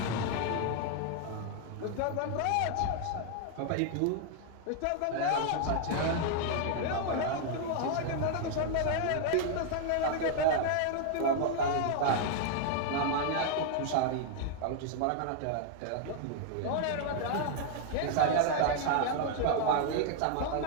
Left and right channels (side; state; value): both; different; correlation 0.00